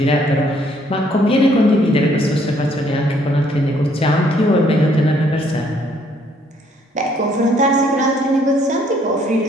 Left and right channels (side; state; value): both; normal; correlation 0.65